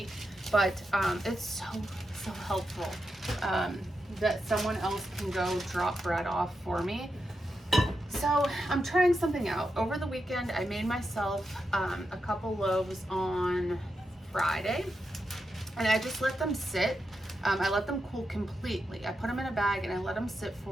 but it's so helpful that someone else can go drop bread off for me. So I'm trying something out. Over the weekend, I made myself a couple loaves on Friday and I just let them sit. I let them cool completely. I put them in a bag and I let them sit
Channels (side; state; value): both; normal; correlation 0.87